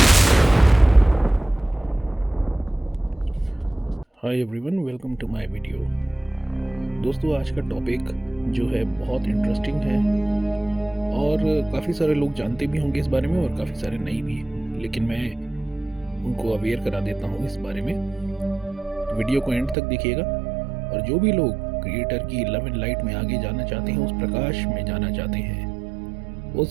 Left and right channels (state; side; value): drops out; left; at 19.8 s